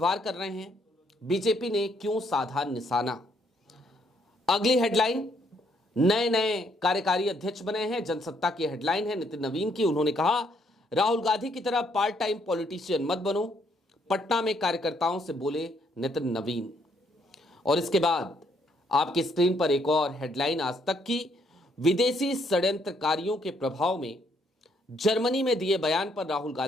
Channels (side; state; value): both; normal; correlation 0.70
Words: कर रहे हैं, बीजेपी ने क्यों साधा निशाना। अगली हेडलाइन, नए नए कार्यकारी अध्यक्ष बने हैं। जनसत्ता की हेडलाइन है नितिन नवीन की। उन्होंने कहा, राहुल गांधी की तरह पार्ट टाइम पॉलिटिशियन मत बनो, पटना में कार्यकर्ताओं से बोले नितिन नवीन। और इसके बाद आपकी स्क्रीन पर एक और हेडलाइन आज तक की, विदेशी षड्यंत्रकारियों के प्रभाव में जर्मनी में दिए बयान पर राहुल